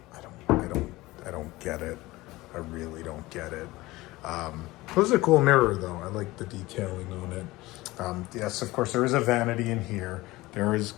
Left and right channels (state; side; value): quieter; right; 19.5 dB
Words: don't get it. I really don't get it. This is a cool mirror, though. I like the detailing on it. Yes, of course, there is a vanity in here. There